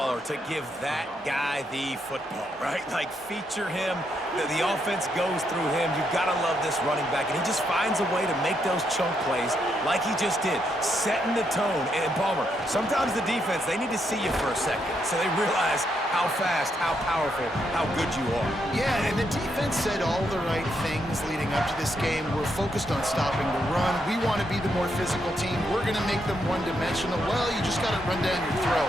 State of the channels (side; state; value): both; normal; correlation 0.78